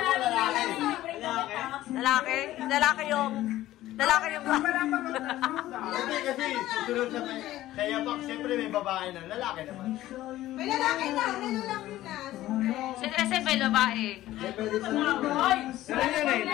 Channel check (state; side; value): quieter; right; 14.9 dB